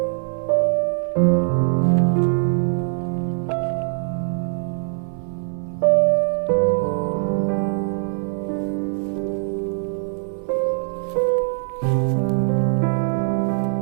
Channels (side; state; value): left; silent; 61 dB below the other